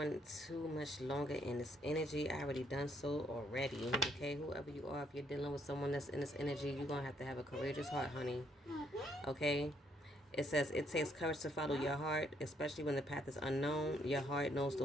too much longer in this energy. I already done so already. Okay, whoever you are, if you're dealing with someone that's in this energy, you're going to have a courageous heart, honey. Okay? It says, it takes courage to follow your heart, especially when the path is unknown. Your heart knows the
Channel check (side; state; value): both; normal; correlation 0.71